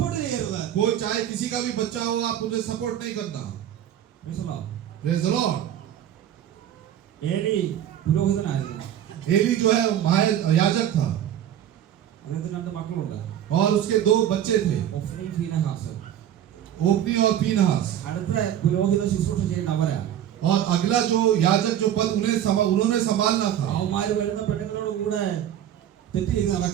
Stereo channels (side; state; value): left; quieter; 10.7 dB